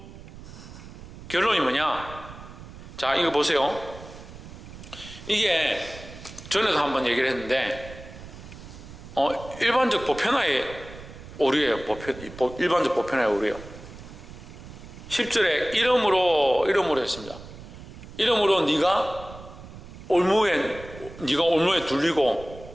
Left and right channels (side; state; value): right; noise; rumble, 15 dB below the sound